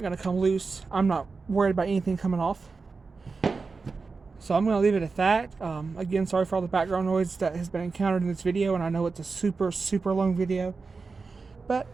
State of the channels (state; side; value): quieter; left; 4.4 dB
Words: going to come loose. I'm not worried about anything coming off. So I'm going to leave it at that. Again, sorry for all the background noise that has been encountered in this video, and I know it's a super, super long video. But,